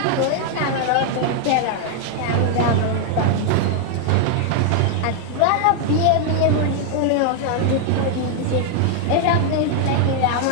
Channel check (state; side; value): different; both; correlation 0.00